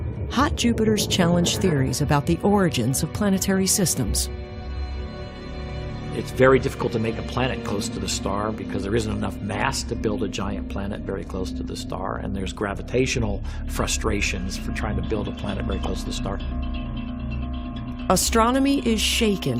hot Jupiters challenge theories about the origins of planetary systems. It's very difficult to make a planet close to the star because there isn't enough mass to build a giant planet very close to the star, and there's gravitational frustrations for trying to build a planet very close to the star. Astronomy is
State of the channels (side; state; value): both; identical; correlation 1.00